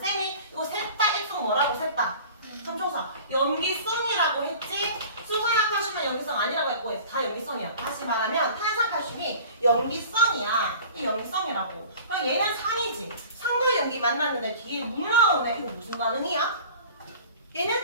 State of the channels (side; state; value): both; inverted; correlation -0.43